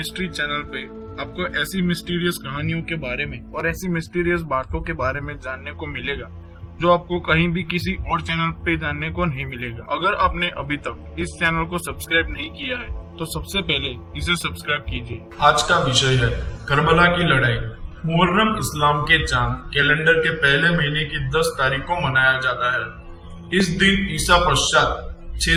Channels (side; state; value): both; identical; correlation 1.00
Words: चैनल पे आपको ऐसी मिस्टीरियस कहानियों के बारे में और ऐसी मिस्टीरियस बातों के बारे में जानने को मिलेगा जो आपको कहीं भी किसी और चैनल पे जानने को नहीं मिलेगा। अगर आपने अभी तक इस चैनल को सब्सक्राइब नहीं किया है तो सबसे पहले इसे सब्सक्राइब कीजिए। आज का विषय है करबला की लड़ाई। मुहर्रम इस्लाम के चांद कैलेंडर के पहले महीने की 10 तारीख को मनाया जाता है। इस दिन ईसा पश्चात